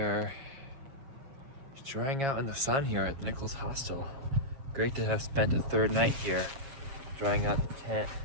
drying out in the sun here at the Nichols Hostel. Great to have spent a third night here, drying out the tent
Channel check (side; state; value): left; late; 7.3 ms